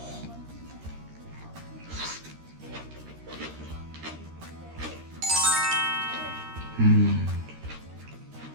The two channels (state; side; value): late; left; 13 ms